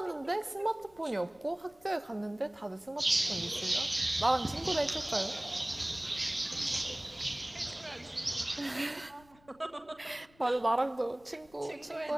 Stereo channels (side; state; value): left; noise; rumble, 28 dB below the sound